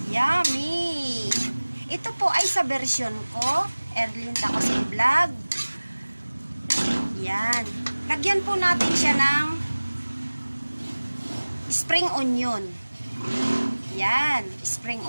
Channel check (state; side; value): inverted; both; correlation -1.00